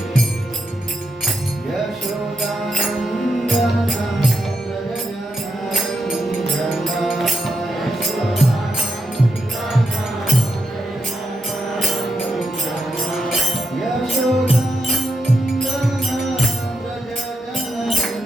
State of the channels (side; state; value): both; normal; correlation 0.83